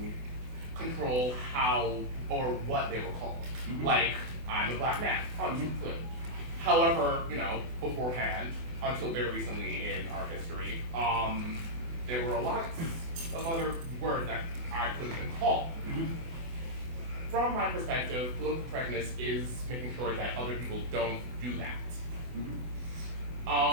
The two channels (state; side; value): late; left; 24 ms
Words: control how or what they were called. Mm-hmm. Like, I'm a black man. Good. However, beforehand, until very recently in our history, there were a lot of other words that I could have been called. Mm-hmm. From my perspective, political correctness is making sure that other people don't do that.